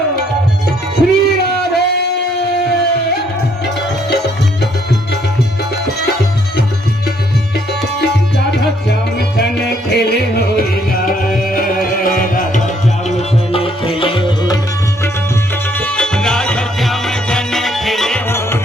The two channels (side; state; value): both; normal; correlation 0.68